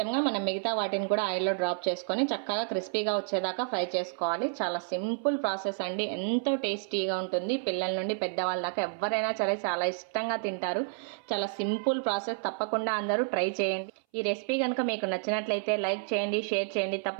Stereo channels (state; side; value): silent; left; 58 dB below the other